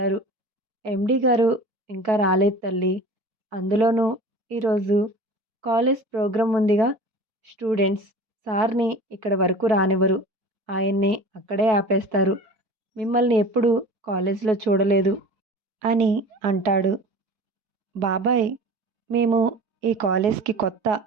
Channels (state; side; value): late; left; 4.6 ms